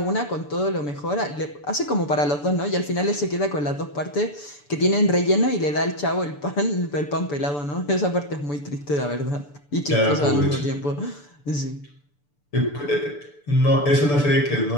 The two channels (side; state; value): right; late; 6.9 ms